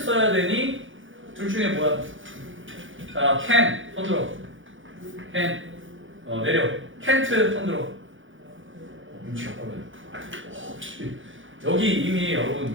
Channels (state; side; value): late; left; 0.57 ms